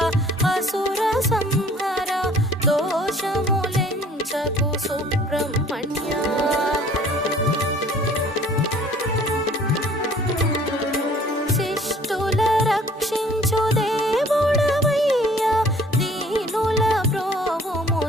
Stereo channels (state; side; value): normal; both; correlation 0.54